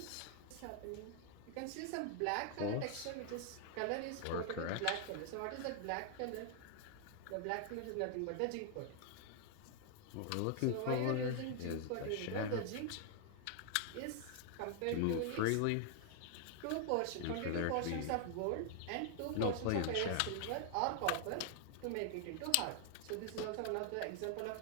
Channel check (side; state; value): both; different; correlation 0.00